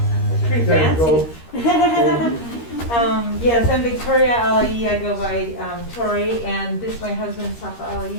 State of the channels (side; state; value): right; late; 13 ms